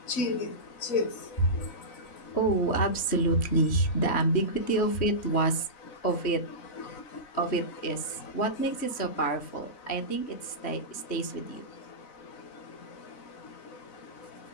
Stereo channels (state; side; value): late; right; 3.1 ms